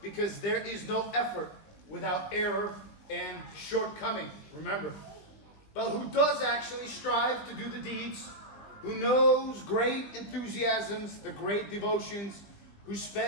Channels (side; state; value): right; late; 20 ms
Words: because there is no effort without error and shortcoming. Remember, but who does actually strive to do the deeds, who knows great enthusiasms, the great devotions, who